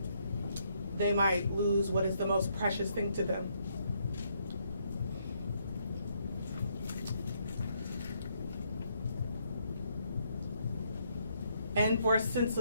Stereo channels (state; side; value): inverted; both; correlation -0.73